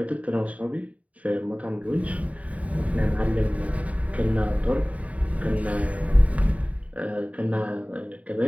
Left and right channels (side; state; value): left; late; 0.068 ms